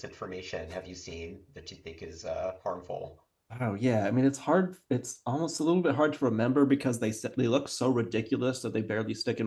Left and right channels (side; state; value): both; identical; correlation 1.00